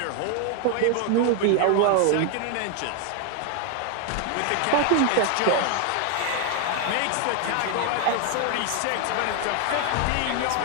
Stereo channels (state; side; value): different; both; correlation 0.00